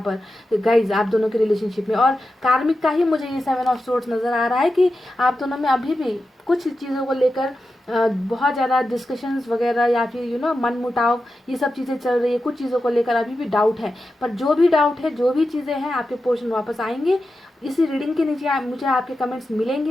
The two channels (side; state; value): both; normal; correlation 0.91